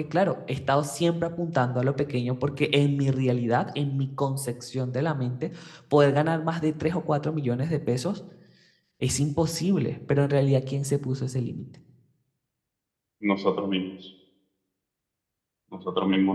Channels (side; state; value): both; identical; correlation 1.00